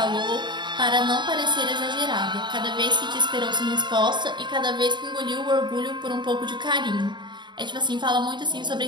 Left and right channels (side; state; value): left; late; 0.22 ms